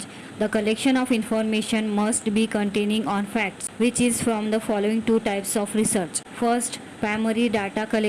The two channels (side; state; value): both; identical; correlation 1.00